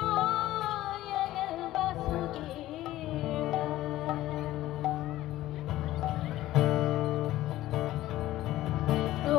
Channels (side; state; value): right; quieter; 15.3 dB